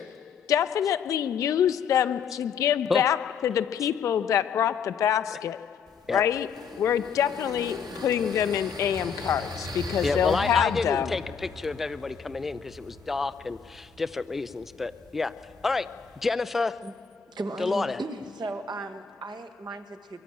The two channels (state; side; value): quieter; right; 6.7 dB